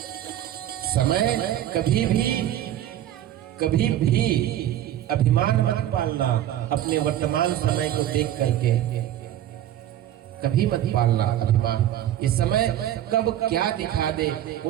समय कभी भी अभिमान मत पालना, अपने वर्तमान समय को देख करके कभी मत पालना अभिमान। ये समय कब क्या दिखा दे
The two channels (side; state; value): left; quieter; 12.1 dB